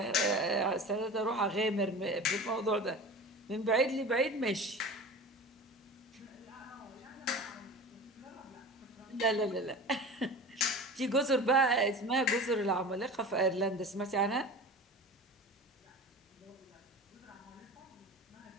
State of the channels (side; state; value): both; normal; correlation 0.34